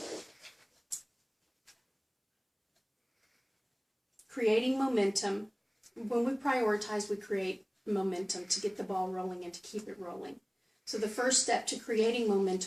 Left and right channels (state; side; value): identical; both; correlation 1.00